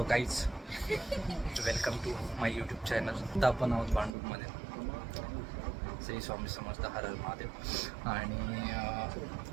guys, welcome to my YouTube channel. आता आपण आहोत भांडूपमध्ये. श्री स्वामी समर्थ, हर हर महादेव. आणि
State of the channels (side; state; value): left; drops out; at 4.1 s